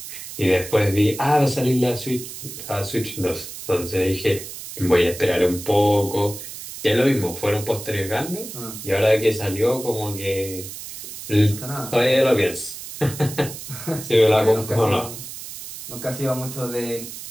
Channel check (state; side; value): noise; right; hiss, 11 dB below the sound